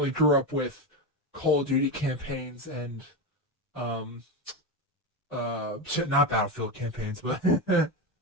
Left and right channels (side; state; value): both; normal; correlation 0.15